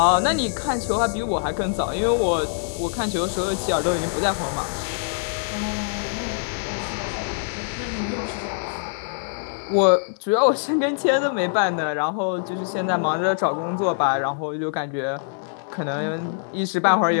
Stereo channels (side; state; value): right; silent; digital silence